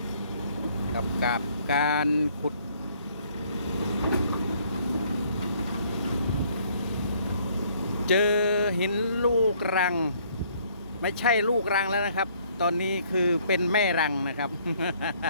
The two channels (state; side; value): inverted; both; correlation -0.63